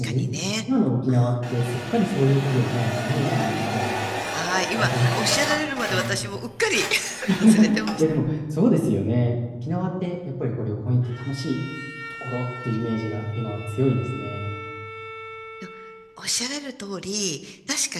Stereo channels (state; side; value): identical; both; correlation 1.00